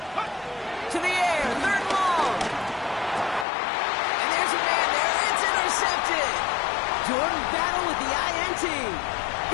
To the air, 3rd and long. And there's a man there. It's intercepted. Jordan Battle with the INT.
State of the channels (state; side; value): drops out; right; at 3.5 s